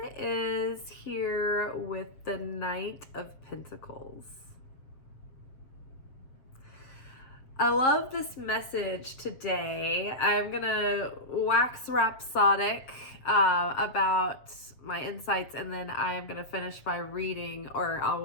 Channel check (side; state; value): right; late; 7.5 ms